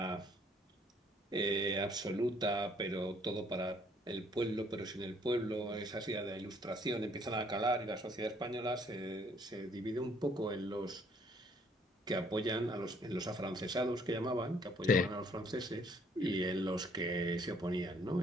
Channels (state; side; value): normal; both; correlation 0.63